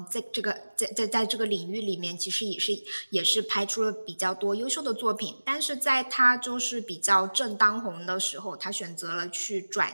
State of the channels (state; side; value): inverted; both; correlation -1.00